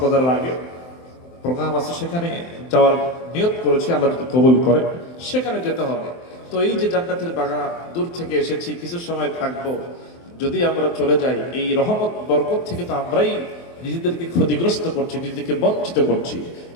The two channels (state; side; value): late; right; 23 ms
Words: আগে প্রোগ্রাম আছে, সেখানে যাওয়ার নিয়ত করেছি। আল্লাহ যদি কবুল করে সেখানে যেতে হবে। তো এই যে জান্নাতের বাগান, দূর থেকে এসেছি, কিছু সময় থাকবো। যদি আমরা চলে যাই, এই রহমত বরকত থেকে তো আমরাই নিজেদেরকে ক্ষতিগ্রস্ত করছি, নিজেদেরকে বঞ্চিত করছি,